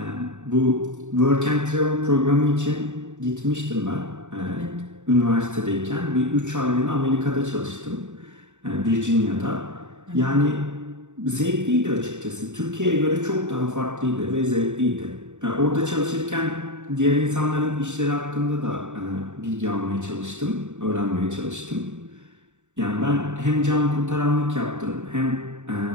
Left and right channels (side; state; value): left; late; 0.84 ms